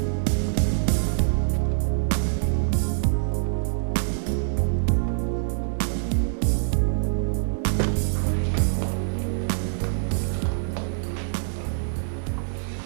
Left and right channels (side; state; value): left; silent; digital silence